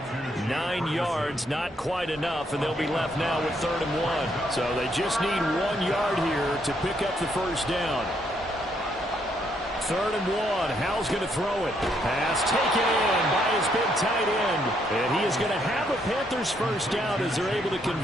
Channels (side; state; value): both; normal; correlation 0.73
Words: 9 yards, not quite enough, and they'll be left now with 3rd and 1. So they just need 1 yard here to pick up the first down. 3rd and 1. Howell's going to throw it. Pass taken in by his big tight end. And he is going to have a Panthers first down as they're able to